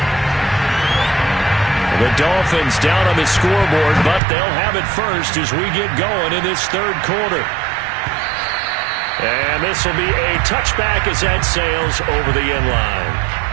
The Dolphins down on the scoreboard, but they'll have it first as we get going in this third quarter. And this will be a touchback as that sails over the end line.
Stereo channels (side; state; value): left; drops out; at 4.2 s